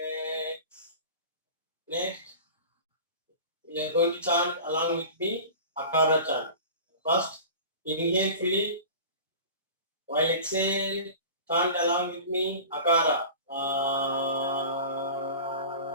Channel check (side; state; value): both; inverted; correlation -0.37